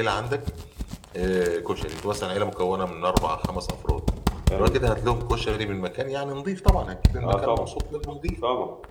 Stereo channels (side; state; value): both; identical; correlation 1.00